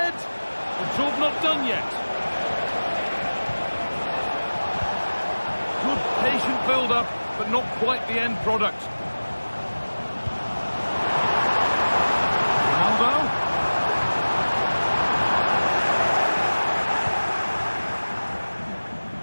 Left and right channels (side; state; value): both; inverted; correlation -1.00